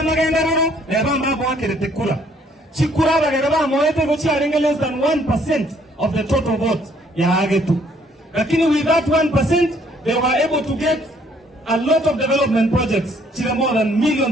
agenda rono leba mabo akirete kura chikura bagere ba moete go chiaringa less than 1% of the total vote ya agetu. Lakini with that 1% they were able to get a lot of development projects chile more than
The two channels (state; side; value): normal; both; correlation 0.64